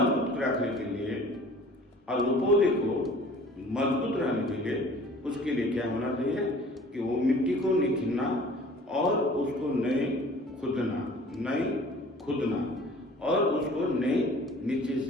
रखने के लिए और वो पौधे को मजबूत रहने के लिए उसके लिए क्या होना चाहिए कि वो मिट्टी को नहीं खींचना और उसको नहीं खुदना और उसको नहीं नीचे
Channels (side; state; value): both; normal; correlation 0.48